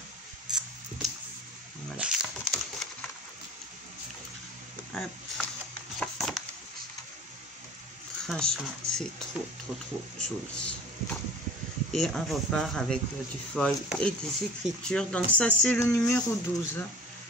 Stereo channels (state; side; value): normal; both; correlation 0.44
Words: Voilà. Hop. Franchement, c'est trop joli. Et on repart avec du foil et des écritures. Donc ça, c'est le numéro 12.